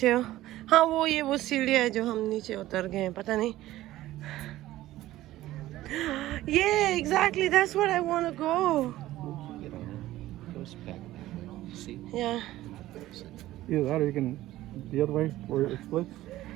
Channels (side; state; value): left; quieter; 15.5 dB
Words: हो. हाँ वो सीढ़ियाँ है जो हम नीचे उतर गए हैं, पता नहीं. Yeah, exactly. That's what I want to go. Yeah. Either that or you can the other way where it splits.